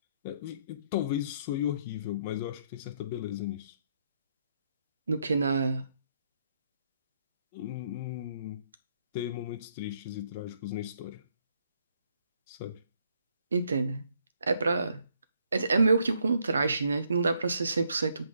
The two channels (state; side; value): inverted; both; correlation -0.71